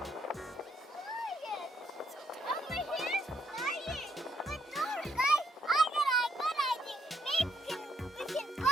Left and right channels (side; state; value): both; normal; correlation 0.74